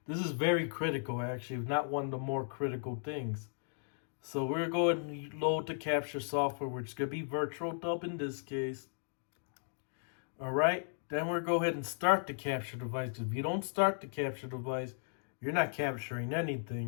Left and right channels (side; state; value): right; silent; digital silence